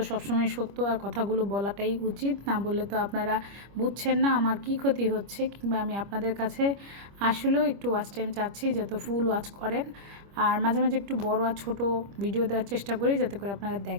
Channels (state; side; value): late; left; 25 ms